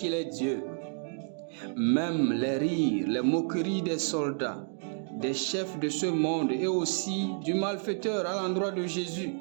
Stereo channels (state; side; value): silent; left; 58 dB below the other